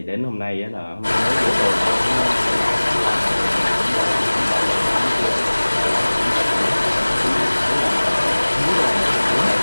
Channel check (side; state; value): both; inverted; correlation -1.00